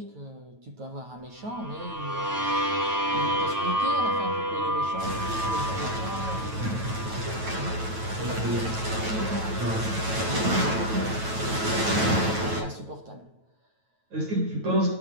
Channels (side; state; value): left; late; 9.2 ms